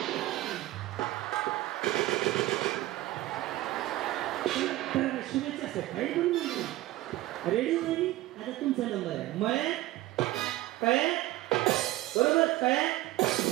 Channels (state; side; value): quieter; left; 17.0 dB